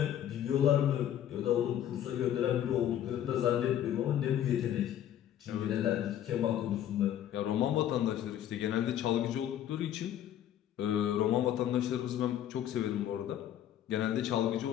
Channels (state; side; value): quieter; right; 11.0 dB